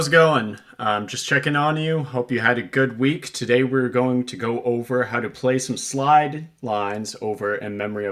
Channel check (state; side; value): identical; both; correlation 1.00